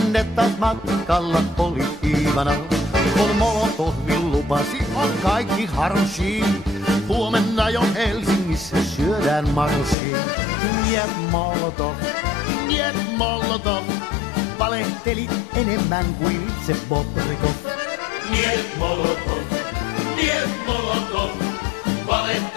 taas matkalla oli Iivana, kun Molotovin lupasi on kaikki harshi. Huomenna jo Helsingissä syödään marshi. Niet Molotov, niet Molotov, valehtelit enemmän kuin itse Bobrikov. Niet Molotov, niet Molotov,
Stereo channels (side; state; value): right; drops out; at 10.0 s